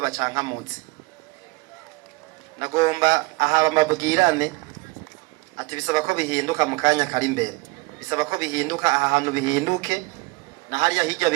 Nagomba aha bamabwirane ati bisaba ko bihinduka mu kanya kari imbere. Bisaba ko bihinduka aha hantu bihinduke, na hariya hirya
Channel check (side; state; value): left; quieter; 24.7 dB